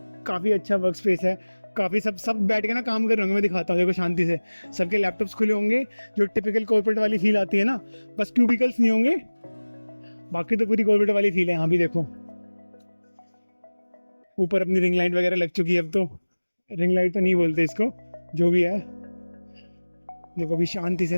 काफ़ी अच्छा वर्क स्पेस है। काफ़ी सब बैठ के ना काम कर रहे होंगे, मैं दिखाता हूँ, देखो शांति से सबके लैपटॉप्स खुले होंगे, जो टिपिकल कॉर्पोरेट वाली फील आती है ना, बस क्यूबिकल्स नहीं होंगे, बाकी तो पूरी कॉर्पोरेट वाली फील है। यहाँ भी देखो ऊपर अपनी रिंग लाइट वगैरह लग चुकी है, अब तो रिंग लाइट तो नहीं बोलते इसको, जो भी है। देखो अभी शांति से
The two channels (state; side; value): inverted; both; correlation -1.00